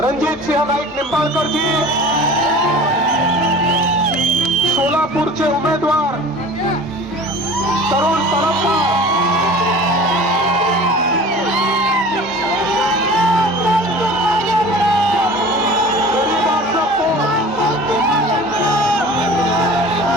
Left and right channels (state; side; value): normal; both; correlation 0.41